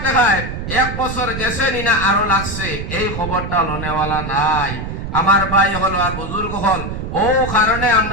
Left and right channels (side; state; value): right; noise; rumble, 6 dB below the sound